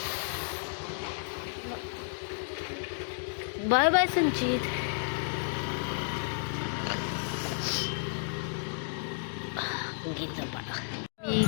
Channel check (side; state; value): right; silent; digital silence